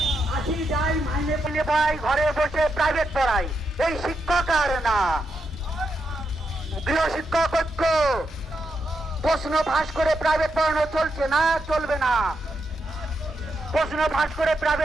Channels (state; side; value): normal; both; correlation 0.83